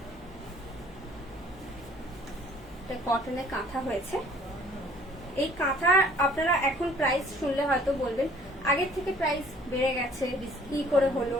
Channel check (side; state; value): both; normal; correlation 0.55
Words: এটা কটনের কাঁথা হয়েছে। এই কাঁথা আপনারা এখন প্রাইস শুনলে হয়তো বলবেন আগের থেকে প্রাইস বেড়ে গেছে, কি করে হলো।